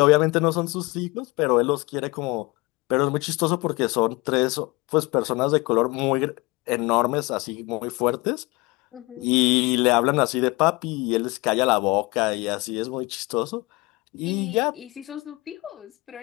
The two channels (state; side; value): quieter; right; 24.2 dB